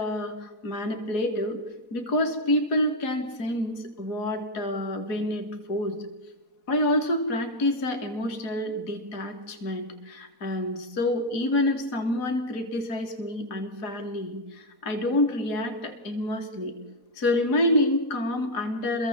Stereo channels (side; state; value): right; late; 4.1 ms